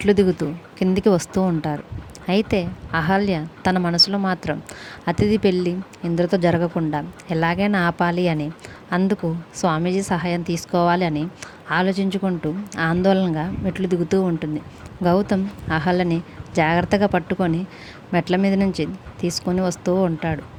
దిగుతూ కిందికి వస్తూ ఉంటారు. అయితే అహల్య తన మనసులో మాత్రం అతిథి పెళ్ళి ఇంద్రతో జరగకుండా ఎలాగైనా ఆపాలి అని, అందుకు స్వామీజీ సహాయం తీసుకోవాలి అని ఆలోచించుకుంటూ ఆందోళనగా మెట్లు దిగుతూ ఉంటుంది. గౌతమ్ అహల్యని జాగ్రత్తగా పట్టుకొని మెట్ల మీద నుంచి తీసుకొని వస్తూ ఉంటాడు.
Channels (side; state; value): both; identical; correlation 1.00